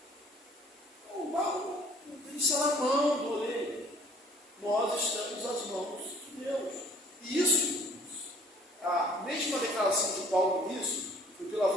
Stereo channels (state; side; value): normal; both; correlation 0.55